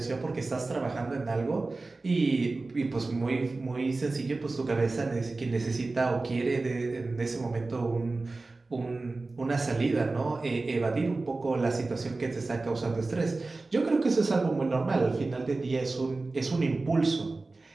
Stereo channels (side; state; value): left; quieter; 3.4 dB